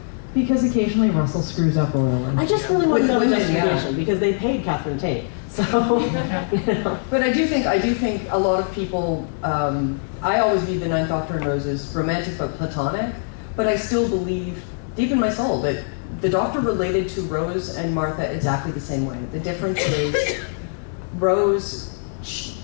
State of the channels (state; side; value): silent; right; digital silence